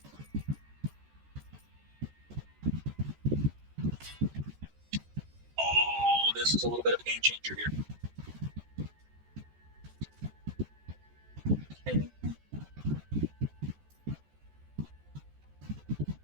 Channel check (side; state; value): left; late; 14 ms